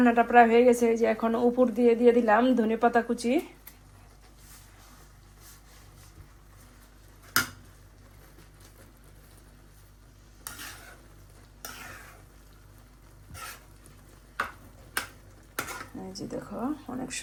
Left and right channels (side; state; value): both; identical; correlation 1.00